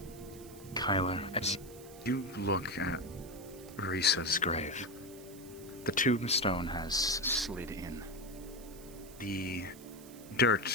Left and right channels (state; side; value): noise; right; hiss, 19 dB below the sound